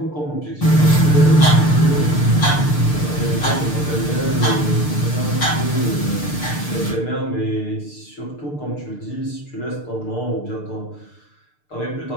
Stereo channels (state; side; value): late; right; 6.7 ms